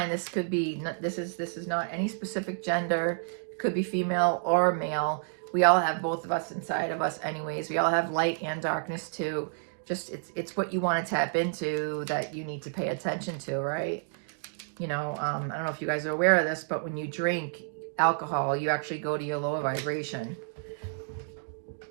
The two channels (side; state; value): left; silent; digital silence